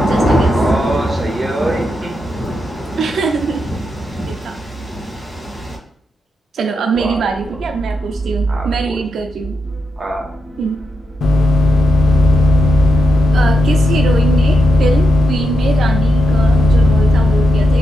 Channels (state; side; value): normal; both; correlation 0.86